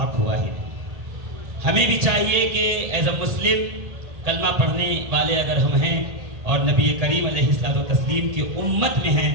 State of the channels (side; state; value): left; late; 1.8 ms